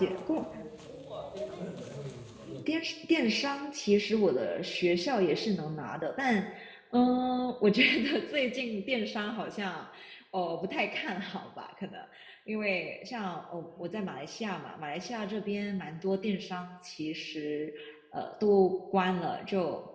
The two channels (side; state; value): both; identical; correlation 1.00